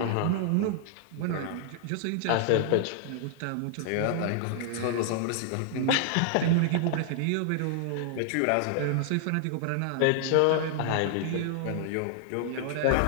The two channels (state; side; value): different; both; correlation -0.01